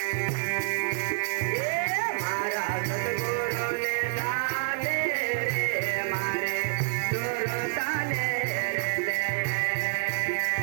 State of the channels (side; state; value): left; silent; 56 dB below the other